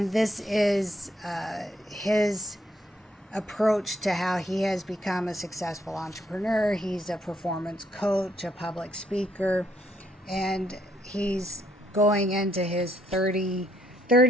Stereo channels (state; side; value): normal; both; correlation 0.71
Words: this is his approach to how he has become a successful entrepreneur. He's a performance coach, a public speaker, and he's going into his 30